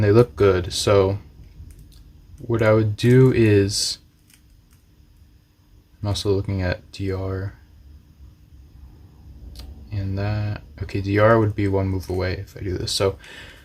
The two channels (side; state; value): both; identical; correlation 1.00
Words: they look good, so what I would do is, I'm also looking at DR and that. Okay, DR would be one move away if I do this. So